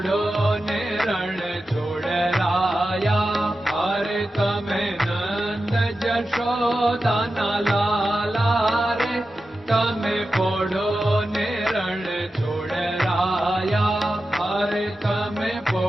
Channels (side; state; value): both; normal; correlation 0.92